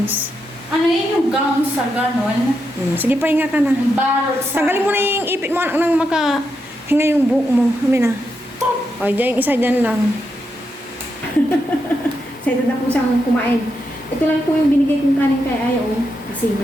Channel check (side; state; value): both; normal; correlation 0.84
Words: Ano yun yung gown sa ganon? Sige, pahinga ka na. Yung barot sa... Tanggalin mo na yung ipit mo nang makahinga yung buhok mo. Amin na. O, dyan yung isa dyan lang. Excited na po siyang kumain. Ito lang po yung binigay kong kanin kay Aya, oh. Kasi